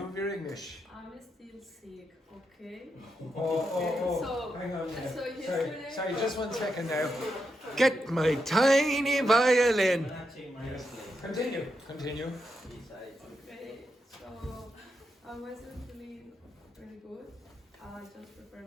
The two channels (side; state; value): both; normal; correlation 0.84